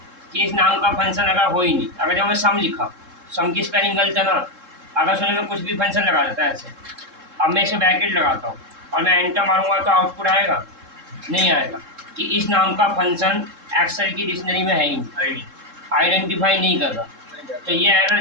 कि इस नाम का फंक्शन अगर हो ही नहीं। अगर जब मैं सम लिखा, सम की स्पेलिंग गलत है ना, अगर सुनो मैं कुछ भी फंक्शन लगा देता है ऐसे, अब मैं इसे ब्रैकेट लगाता हूँ और मैं एंटर मारूंगा तो आउटपुट आएगा, नहीं आएगा, कि इस नाम का फंक्शन एक्सेल की डिक्शनरी में है ही नहीं, आइडेंटिफाई नहीं कर रहा। तो ये एरर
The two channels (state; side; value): late; left; 3.7 ms